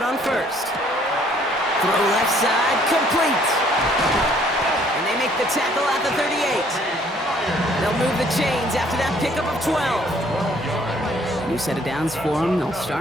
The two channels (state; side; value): normal; both; correlation 0.61